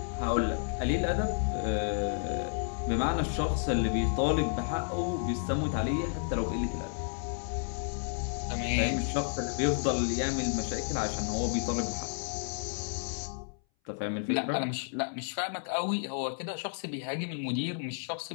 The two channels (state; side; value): silent; right; 57 dB below the other